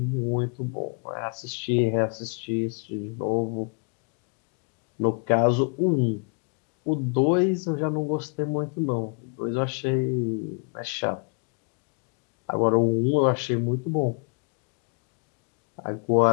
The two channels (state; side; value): quieter; right; 38.7 dB